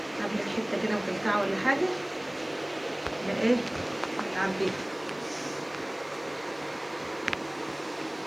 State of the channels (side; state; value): right; noise; hiss, 28 dB below the sound